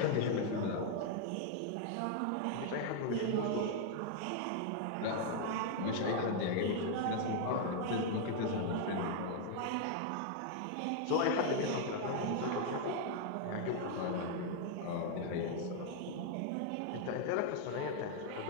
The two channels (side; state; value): both; different; correlation 0.00